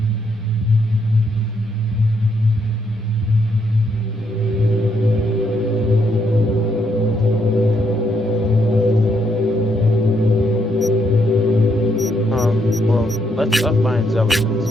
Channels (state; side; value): normal; both; correlation 0.75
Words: Well, let's find